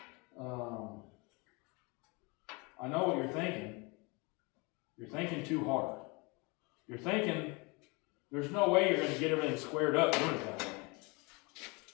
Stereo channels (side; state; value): right; quieter; 28.4 dB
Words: I know what you're thinking. You're thinking too hard. You're thinking there's no way you're going to get everything squared up doing it that way.